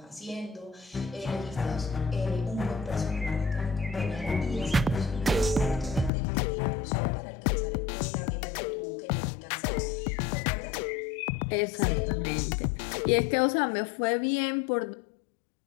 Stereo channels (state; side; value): drops out; right; at 6.1 s